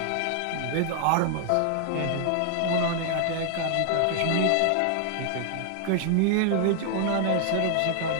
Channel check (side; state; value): both; different; correlation 0.00